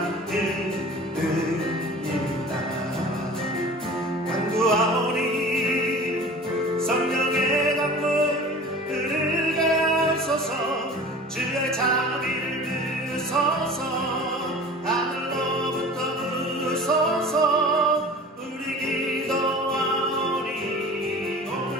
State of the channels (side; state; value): both; normal; correlation 0.41